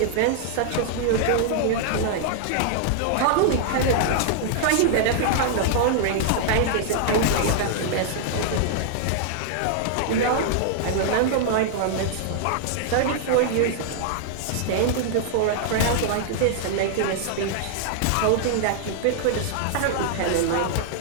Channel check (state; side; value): different; both; correlation -0.01